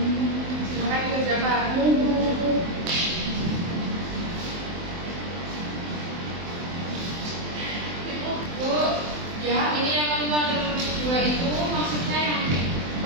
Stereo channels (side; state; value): left; late; 23 ms